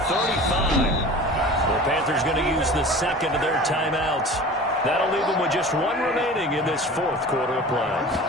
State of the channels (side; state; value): both; normal; correlation 0.39